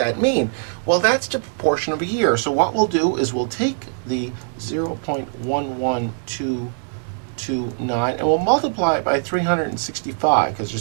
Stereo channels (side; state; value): left; silent; digital silence